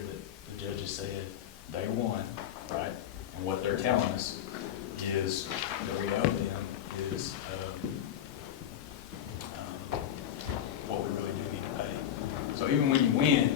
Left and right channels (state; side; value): quieter; right; 10.4 dB